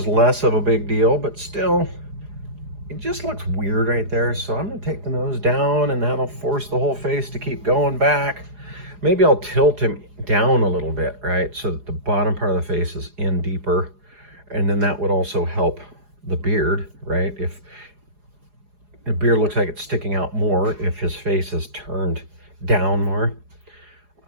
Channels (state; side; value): late; left; 4.8 ms